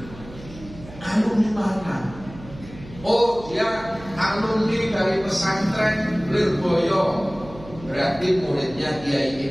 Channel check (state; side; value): noise; right; hum, 17 dB below the sound